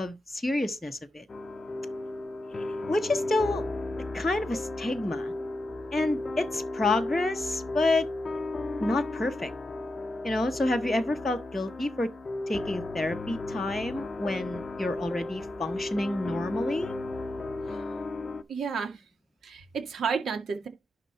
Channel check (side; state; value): both; normal; correlation 0.88